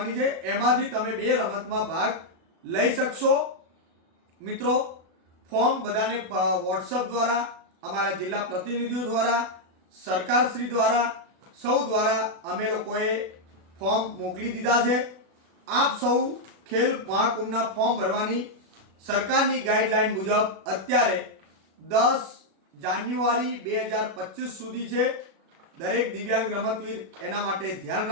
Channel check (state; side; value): late; left; 36 ms